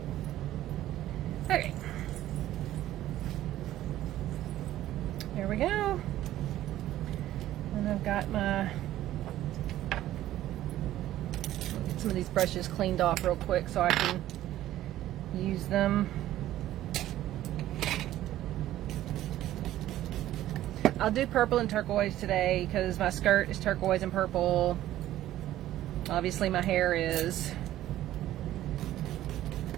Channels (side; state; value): left; quieter; 13.8 dB